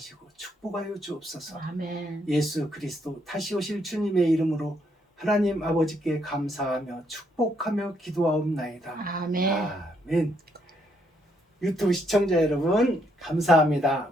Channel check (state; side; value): normal; both; correlation 0.74